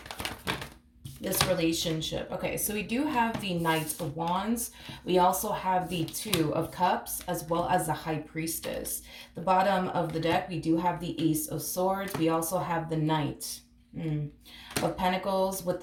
this relationship? Okay, so we do have the Knight of Wands. We also have the Two of Cups as well as the High Priestess. The bottom of the deck, we do have the Ace of Swords. We also have the Knight of Pentacles with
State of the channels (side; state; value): both; identical; correlation 1.00